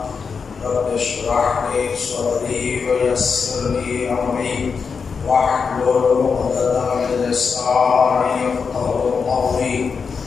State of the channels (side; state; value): right; quieter; 5.6 dB